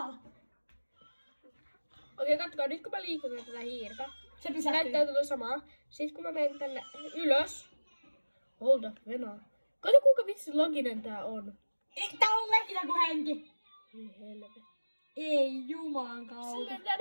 Okei, kattokaa. Nyt kun mä liikun tätä hiirtä. Se Se pysähtyy. näyttää tuota samaa. Sitten kun mä menen tänne ylös. Hold up, venaa. Kato kuinka vitsi loginen tää on. Tää on legitä kuin henki. Ei helvetti. Ei juman kautta. Silleen tää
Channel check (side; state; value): both; inverted; correlation -1.00